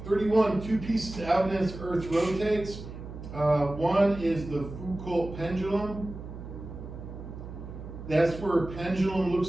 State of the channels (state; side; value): noise; right; hum, 11 dB below the sound